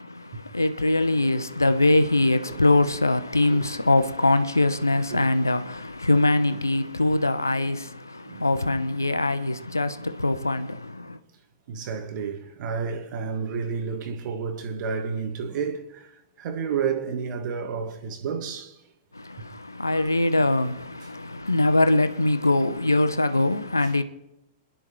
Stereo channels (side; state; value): both; inverted; correlation -0.89